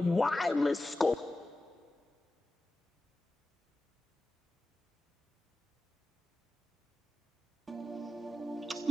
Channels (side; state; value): both; normal; correlation 0.93